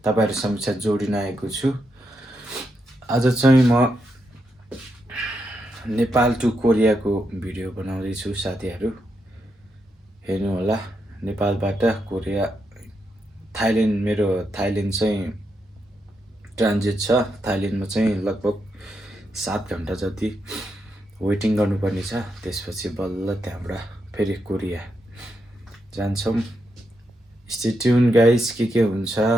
तपाईँहरू समक्ष जोडिन आएको छु। आज चाहिँ म नेपाल टु कोरियाको भिडियो बनाउँदैछु। साथीहरू हेर्नु होला। नेपालबाट कोरिया, थाइल्यान्ड, मेरो थाइल्यान्ड चाहिँ ट्रान्जिट छ। थाइल्यान्डमा चाहिँ लगभग 7 घन्टा जति वेटिङ गर्नुपर्ने छ। त्यसपछि बल्ल त्यहाँबाट फेरि कोरिया जान्छौँ। स्टे ट्युन गाइज, के हुन्छ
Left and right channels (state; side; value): normal; both; correlation 0.83